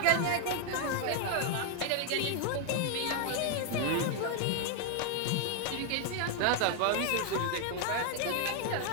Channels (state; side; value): different; both; correlation 0.00